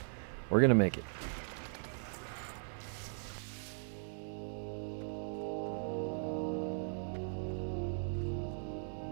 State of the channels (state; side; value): silent; left; digital silence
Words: we're going to make it.